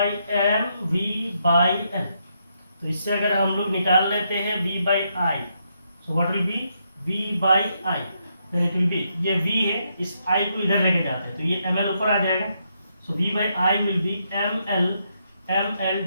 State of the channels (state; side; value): inverted; both; correlation -0.78